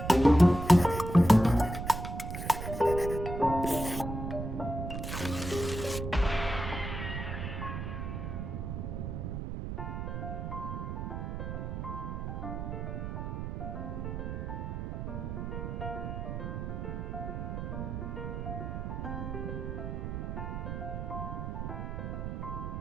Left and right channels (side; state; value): right; noise; rumble, 4 dB below the sound